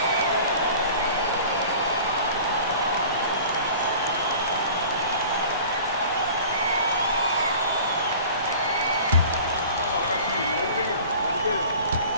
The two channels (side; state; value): both; inverted; correlation -0.43